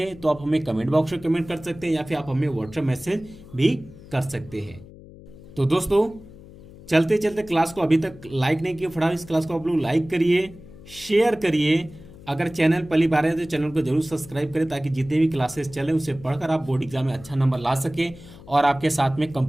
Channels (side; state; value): left; noise; hum, 19 dB below the sound